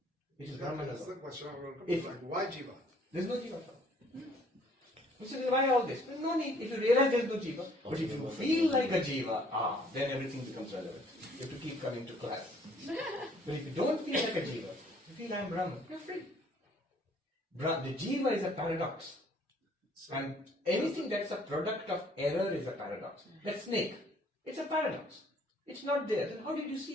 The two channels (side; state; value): both; normal; correlation 0.60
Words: It is Brahman That's the alone. question I'm going to come back. Why Jiva? There is no jiva at all. You say, why all this? There's no need. If you realize there is no jiva, but if you feel like a jiva, then everything becomes relevant. You have to keep coming to class. But if you don't feel like a jiva, you feel I am Brahman, you're free. The jiva is a paradox. And anything that's a product of error is a paradox. That snake, it's a paradox. It's not there. Then how did you